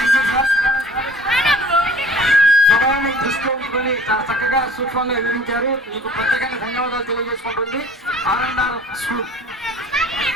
సమయాన్ని దృష్టిలో ఉంచుకొని చాలా చక్కగా సూక్ష్మంగా వివరించారు. మీకు ప్రత్యేకంగా ధన్యవాదాలు తెలియజేసుకుంటుంది ఆర్&ఆర్ స్కూల్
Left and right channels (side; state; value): both; normal; correlation 0.49